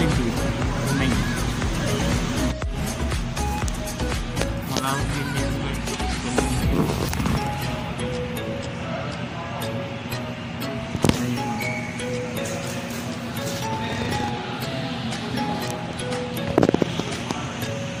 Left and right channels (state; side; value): identical; both; correlation 1.00